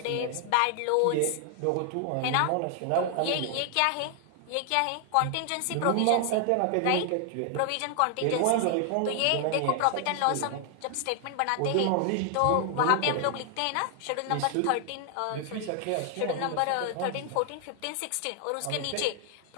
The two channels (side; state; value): both; different; correlation 0.00